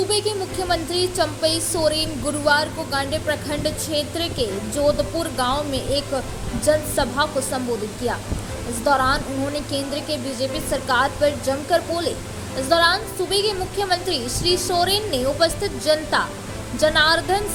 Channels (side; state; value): both; identical; correlation 1.00